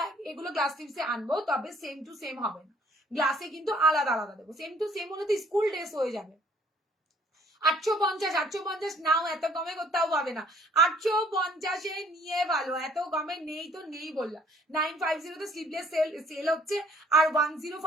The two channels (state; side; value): normal; both; correlation 0.59